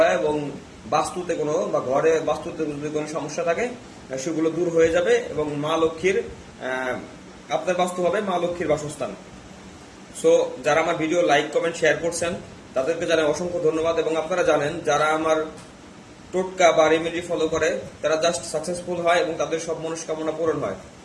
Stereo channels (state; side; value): identical; both; correlation 1.00